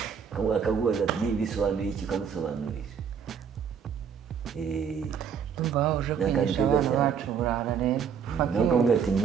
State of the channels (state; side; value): quieter; left; 7.1 dB